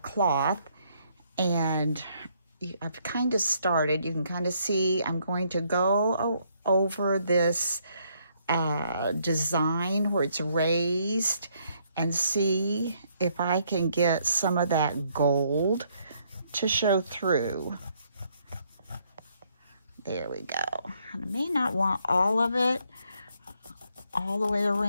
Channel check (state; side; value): inverted; both; correlation -0.70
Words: cloth, and I've kind of started, you can kind of see, I'm going to go over this design where it's raised and see if I can get some of that gold to show through. There we go. And I may not want all of it all the way